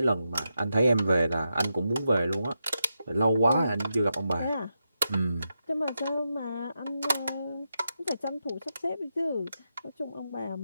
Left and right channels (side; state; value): both; inverted; correlation -0.86